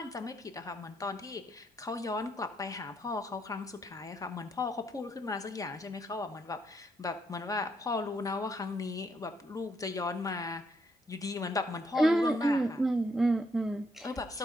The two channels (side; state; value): both; normal; correlation 0.74